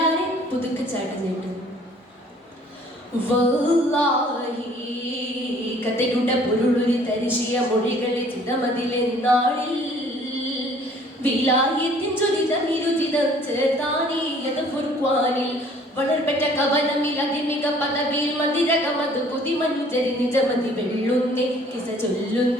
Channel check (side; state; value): both; normal; correlation 0.55